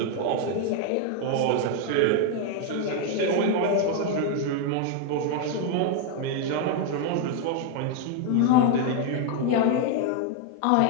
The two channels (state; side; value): different; both; correlation 0.00